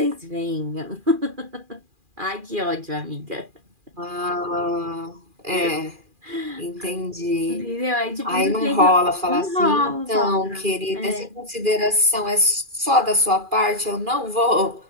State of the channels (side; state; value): left; late; 2.4 ms